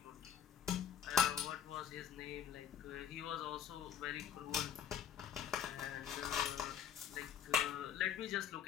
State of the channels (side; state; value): right; quieter; 8.9 dB